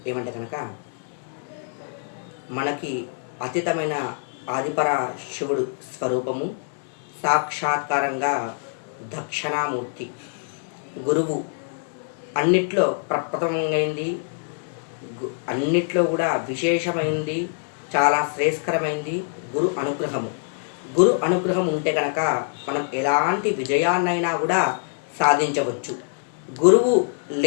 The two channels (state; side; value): silent; right; digital silence